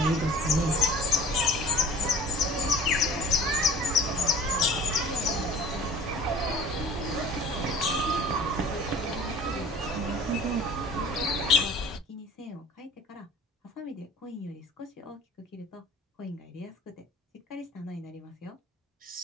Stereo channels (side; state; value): both; normal; correlation 0.44